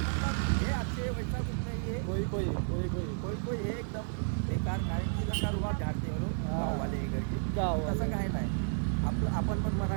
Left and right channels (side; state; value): left; silent; 56 dB below the other